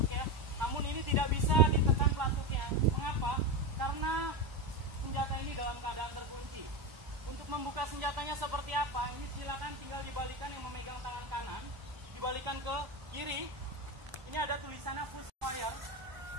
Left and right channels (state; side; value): late; left; 1.0 ms